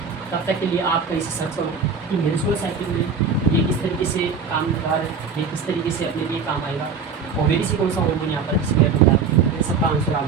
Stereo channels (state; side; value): quieter; left; 5.4 dB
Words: तब तक के लिए आप कहीं से सर्च करो कि मेंस्ट्रुअल साइकिल में ये किस तरीके से काम कर रहा है, ये किस तरीके से अपने लिए काम आएगा, ओवेरी से कौन सा हार्मोन यहाँ पर डिस्प्ले होता है, इन सबका आंसर आप